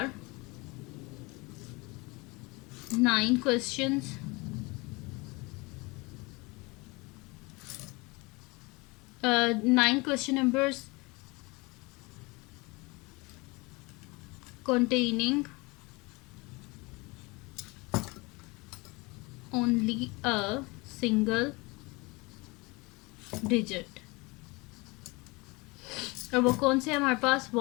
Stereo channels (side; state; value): right; quieter; 25.6 dB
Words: 9 questions, 9 question numbers containing only a single digit। और वो कौन से है हमारे पास